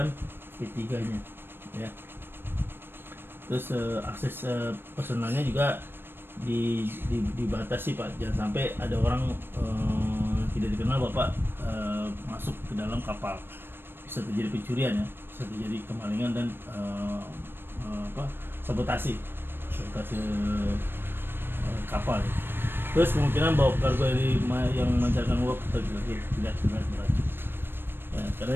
P3-nya ya. Terus akses personalnya juga dibatasi Pak, jangan sampai ada orang tidak dikenal Bapak masuk ke dalam kapal, bisa terjadi pencurian ya, bisa terjadi kemalingan dan sabotase kapal ya. Terus kemungkinan bawa kargo yang memancarkan uap tidak beracun ya, karena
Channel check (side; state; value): left; late; 0.10 ms